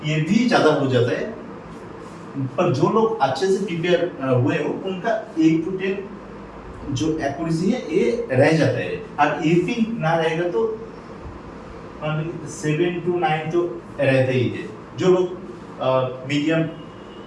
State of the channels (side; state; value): both; identical; correlation 1.00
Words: ये भी ज़्यादा हो जाता है। पर जो लोग अच्छे से प्रिपेयर हुए हो उनका 8 to 10 जो एक्यूरेसी है ये रह जाता है। और ये भी ना रहेगा तो 7 to 9 तो रहता ही है। जो लोग मीडियम